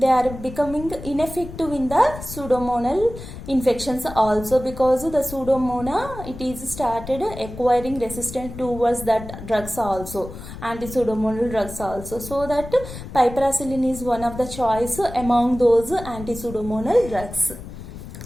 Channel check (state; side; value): noise; left; rumble, 12 dB below the sound